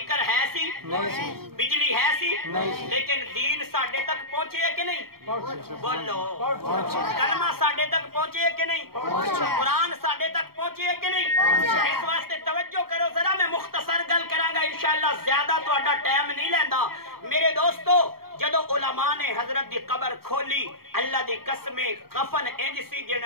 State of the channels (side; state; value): left; late; 0.94 ms